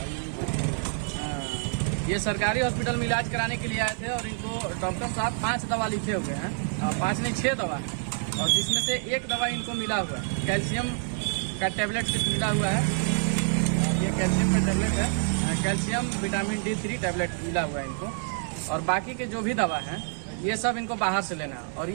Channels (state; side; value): silent; left; 60 dB below the other